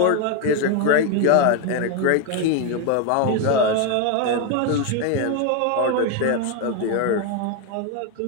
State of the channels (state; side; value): different; both; correlation 0.01